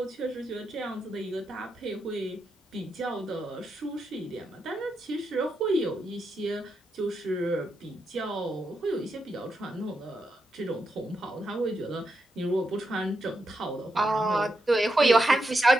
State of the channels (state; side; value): normal; both; correlation 0.84